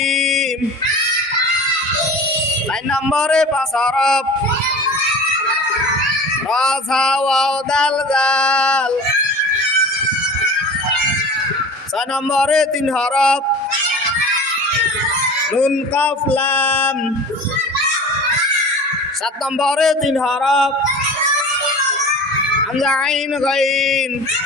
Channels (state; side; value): normal; both; correlation 0.37